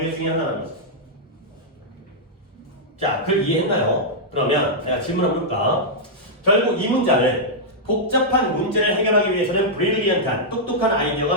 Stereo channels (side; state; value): both; normal; correlation -0.08